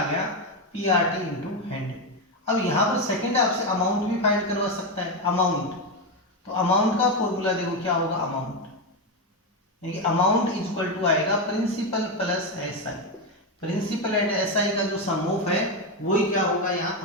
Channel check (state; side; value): normal; both; correlation 0.09